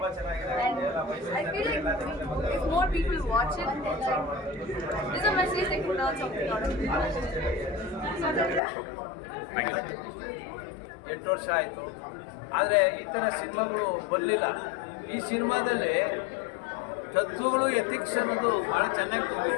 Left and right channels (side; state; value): right; drops out; at 8.6 s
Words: and I feel like if more people watch it, there's a message they can learn something out of it. Okay, thank you. 8 ವರ್ಷ ಆಯಿತು, ಆದರೆ ಈ ಥರ ಸಿನಿಮಾಗಳು ಬರಲಿಲ್ಲ. ಈ ಸಿನಿಮಾದಲ್ಲಿ ತತ್ವಗಳು, ಎಥಿಕ್ಸ್ ಅನ್ನೋದು ಭಾಳ ಚೆನ್ನಾಗಿ